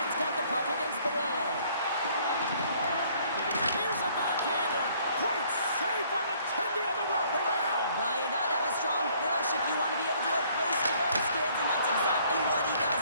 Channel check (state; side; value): inverted; both; correlation -0.61